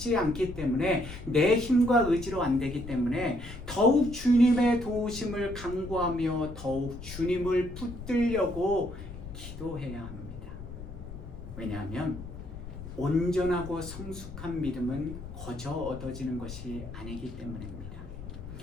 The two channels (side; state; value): left; noise; rumble, 11 dB below the sound